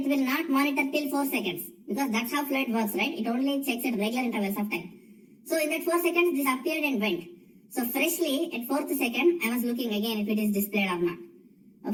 will not monitor till 4 seconds. Because that's how fluent works, right? It only checks at regular intervals of time. So in that 4 seconds, this appeared and went. So freshly, at 4th second, I was looking again if it is displayed or not.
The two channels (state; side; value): identical; both; correlation 1.00